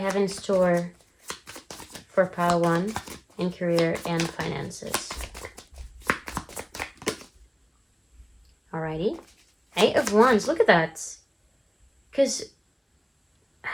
in store for Pile 1 in career and finances? Alrighty. 8 of Wands. Look at that. Because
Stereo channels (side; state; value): both; identical; correlation 1.00